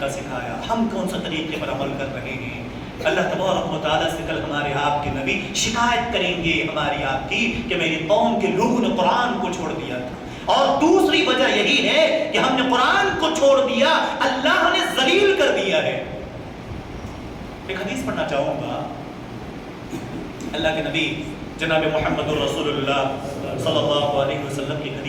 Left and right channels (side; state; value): both; identical; correlation 1.00